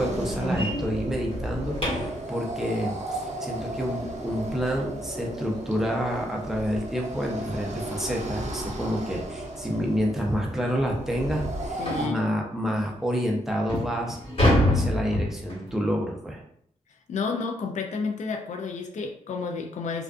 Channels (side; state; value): both; normal; correlation 0.76